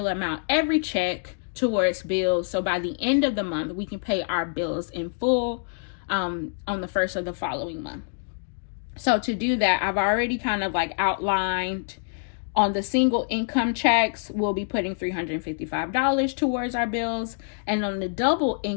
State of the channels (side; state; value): right; silent; digital silence